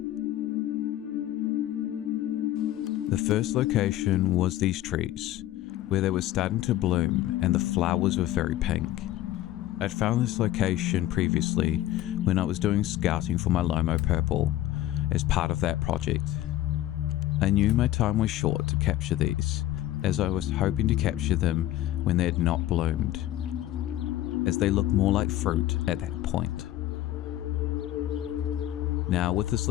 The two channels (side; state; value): right; quieter; 14.1 dB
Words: The first location was these trees, where they were starting to bloom and the flowers were very pink. I'd found this location previously when I was doing scouting for my Lomo Purple as part of that project. I knew my time was short to capture these, as I was hoping to capture them when they had not bloomed, as they looked more like fruit at that point. Now with this